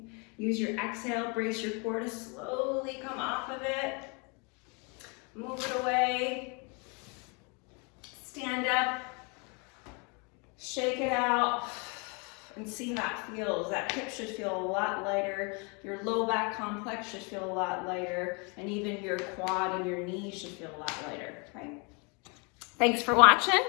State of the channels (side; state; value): right; quieter; 32.6 dB